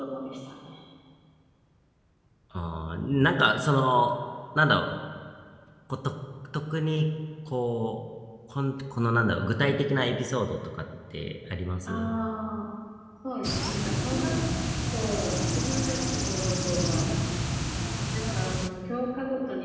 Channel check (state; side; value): identical; both; correlation 1.00